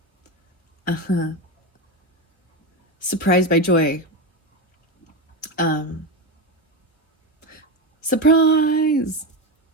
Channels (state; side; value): normal; both; correlation 0.15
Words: Surprised by joy. Surprise!